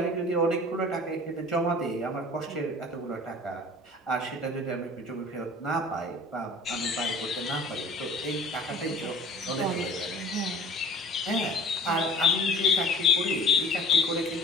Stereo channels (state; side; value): normal; both; correlation 0.43